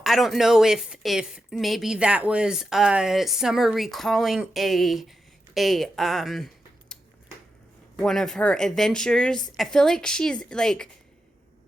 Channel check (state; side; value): normal; both; correlation 0.88